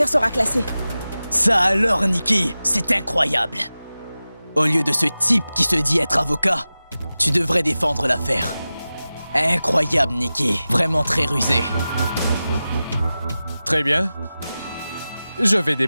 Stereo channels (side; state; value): both; inverted; correlation -0.95